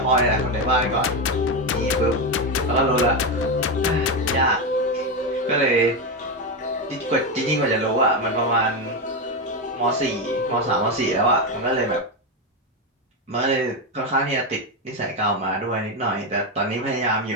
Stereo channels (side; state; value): both; normal; correlation 0.11